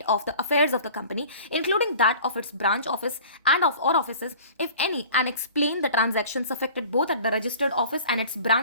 of the affairs of the company including that of its branch office and of और offices if any and explain the transactions affected both at the registered office and it's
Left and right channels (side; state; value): both; inverted; correlation -0.44